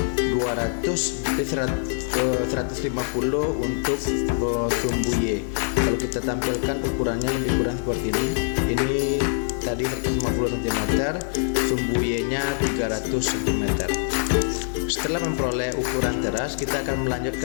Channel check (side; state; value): right; silent; digital silence